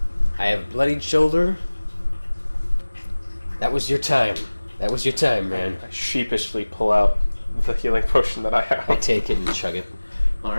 I have a bloodied shoulder. That was your time. That was your time, man. I sheepishly pull out the healing potion that I have. I take it and chug it.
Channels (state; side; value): inverted; both; correlation -1.00